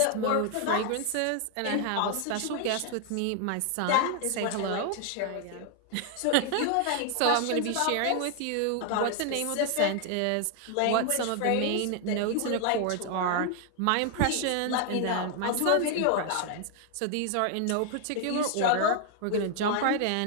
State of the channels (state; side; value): different; both; correlation 0.00